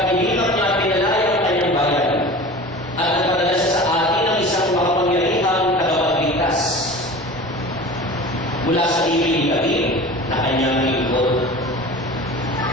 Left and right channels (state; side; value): normal; both; correlation 0.37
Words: inilang niya pinalaya ang kanyang bayan at nagpadala siya sa atin ang isang makapangyarihang tagapagligtas mula sa ibig ni David na kanyang lingkod.